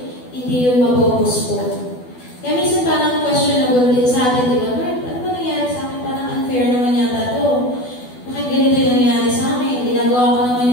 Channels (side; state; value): right; late; 12 ms